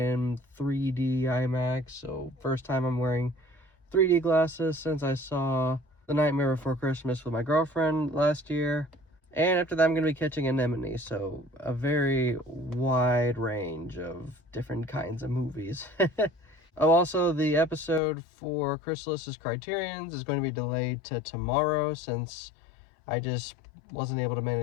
3D IMAX. So first time I'm wearing 3D glasses since I saw The Nightmare Before Christmas with my girlfriend last year. And after that, I'm going to be catching Anemone. So a very wide range of different kinds of movies. Oh, also, the episode for Chrysalis's Criterions is going to be delayed to tomorrow since I just wasn't able to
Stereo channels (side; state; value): right; drops out; at 18.0 s